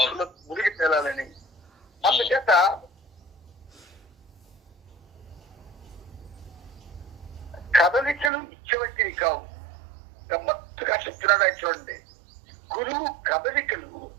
మునిగి తేలాలని. అందుచేత కదలికలు ఇచ్చేవంటివి కావు. గమ్మత్తుగా చెప్తున్నాడు ఆయన చూడండి. గురువు కదలికలు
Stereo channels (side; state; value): left; drops out; at 8.3 s